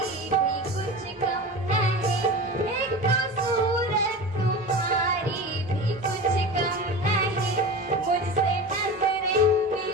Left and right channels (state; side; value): normal; both; correlation 0.31